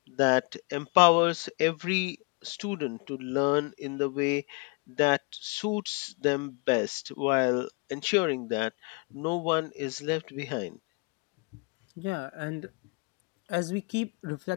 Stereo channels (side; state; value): right; quieter; 30.5 dB